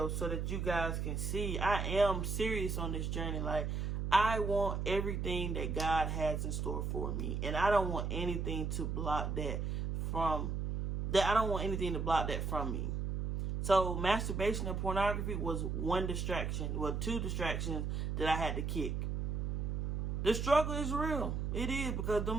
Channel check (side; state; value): right; noise; hum, 1 dB below the sound